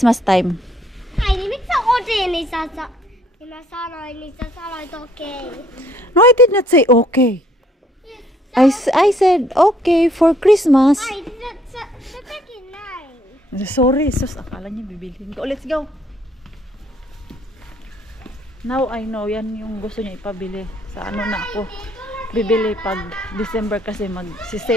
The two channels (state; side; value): normal; both; correlation 0.64